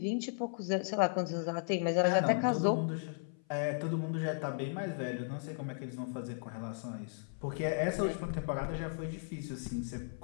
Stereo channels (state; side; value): silent; right; 54 dB below the other